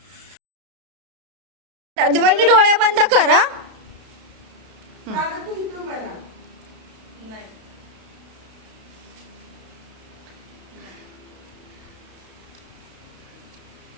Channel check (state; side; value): late; left; 32 ms